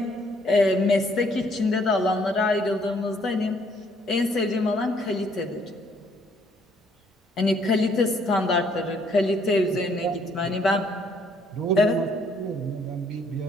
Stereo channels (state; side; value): normal; both; correlation 0.66